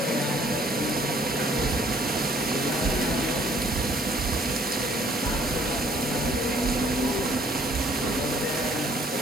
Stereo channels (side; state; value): both; normal; correlation 0.60